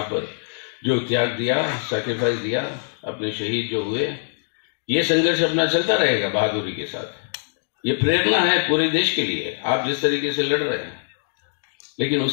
पर जो त्याग दिया, सैक्रिफाइस दिया, अपने शहीद जो हुए, ये संघर्ष अपना चलता रहेगा बहादुरी के साथ। ये प्रेरणा है पूरे देश के लिए, आप जिस तरीके से लड़ रहे हैं, लेकिन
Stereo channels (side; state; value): right; silent; digital silence